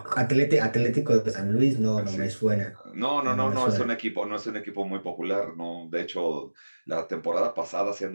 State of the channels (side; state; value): both; inverted; correlation -1.00